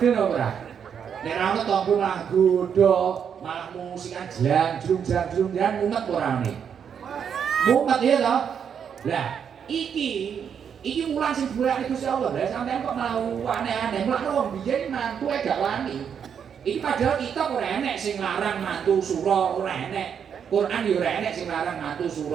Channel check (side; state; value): left; quieter; 7.6 dB